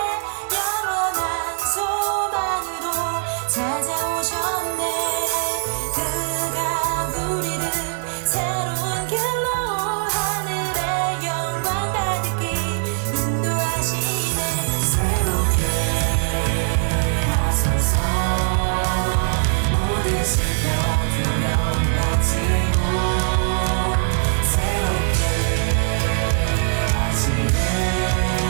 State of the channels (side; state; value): left; silent; digital silence